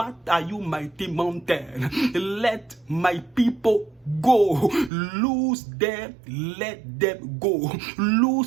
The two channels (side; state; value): left; drops out; at 4.9 s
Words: are you, mighty mountain? Let my people go. Lose them, let them go.